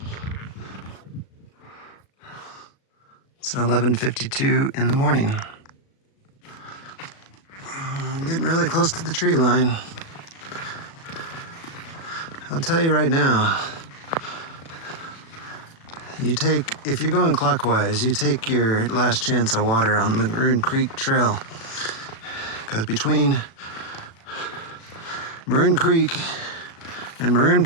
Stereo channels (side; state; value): right; late; 36 ms